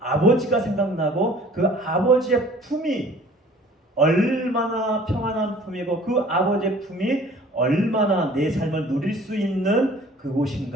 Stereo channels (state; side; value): normal; both; correlation 0.51